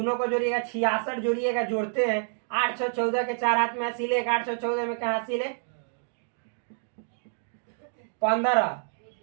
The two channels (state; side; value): silent; left; digital silence